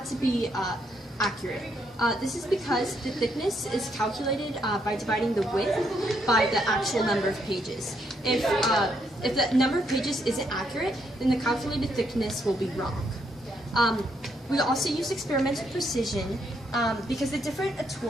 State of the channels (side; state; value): both; normal; correlation 0.75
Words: to be accurate. This is because the thickness is calculated by dividing the width by the actual number of pages. If the number of pages isn't accurate, then the calculated thickness will be wrong. We also use experimental precision because the different